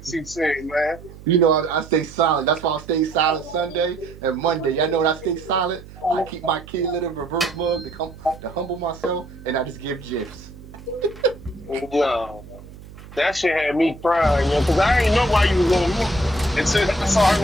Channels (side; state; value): right; noise; hum, 18 dB below the sound